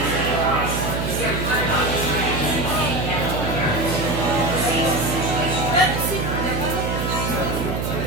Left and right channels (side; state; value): right; noise; hum, 1 dB below the sound